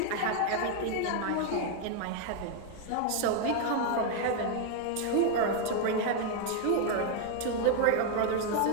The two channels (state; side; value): different; both; correlation 0.00